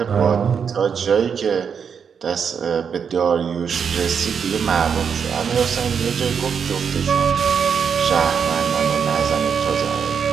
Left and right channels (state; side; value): quieter; left; 6.9 dB